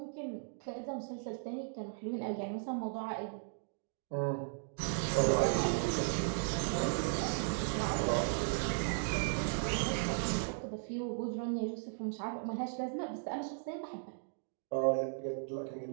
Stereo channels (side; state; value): left; silent; digital silence